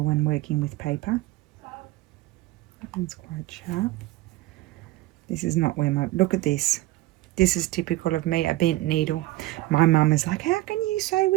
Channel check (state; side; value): quieter; left; 17.8 dB